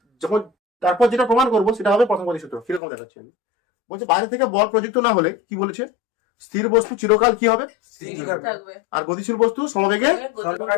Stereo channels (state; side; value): drops out; right; at 2.8 s